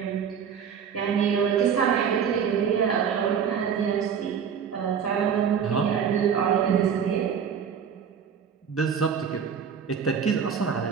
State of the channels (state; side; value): quieter; left; 7.4 dB